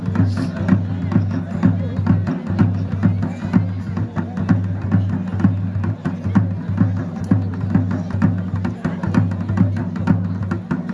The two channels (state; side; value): identical; both; correlation 1.00